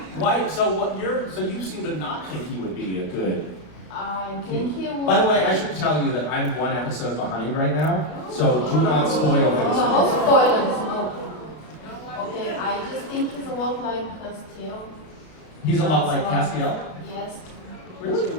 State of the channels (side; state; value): right; late; 32 ms